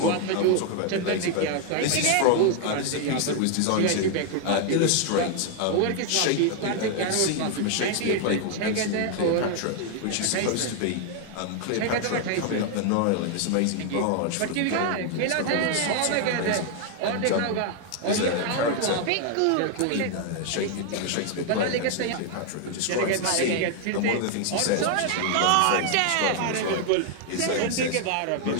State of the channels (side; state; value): both; different; correlation 0.00